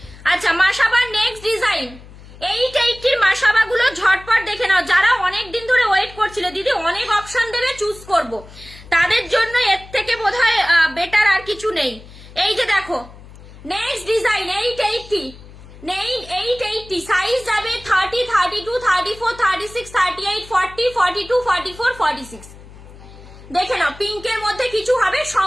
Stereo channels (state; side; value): noise; left; hum, 19 dB below the sound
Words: আচ্ছা মাসাবার নেক্সট ডিজাইন 880 মাসাবা গুলো ঝটপট দেখে নাও। যারা অনেক দিন ধরে ওয়েট করছিল দিদি অনেক অপশন দেবে চুজ করব, তাদের জন্য এর থেকে বোধহয় বেটার আর কিছু নেই। এই যে দেখো নেক্সট ডিজাইন 880, 880। সাইজ যাবে 30, 32, 34, 36, 38, 40, 42, 44, 46। দেখে নাও পিঙ্কের মধ্যে কিছু হবে,